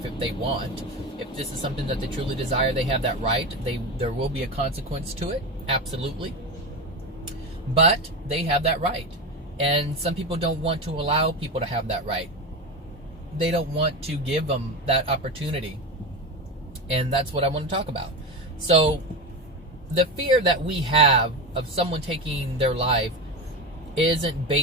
if they want. If this is something that they truly desire, they have that right. There will be a consequence to it, absolutely. But they have that right. And some people don't want to allow people to have that right. They don't want to give them that opportunity. And that's what I want to talk about. So, the fear that we have of someone taking their life isn't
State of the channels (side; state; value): both; normal; correlation 0.20